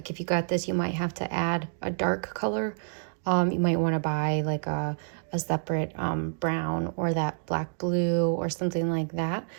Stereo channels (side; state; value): left; silent; digital silence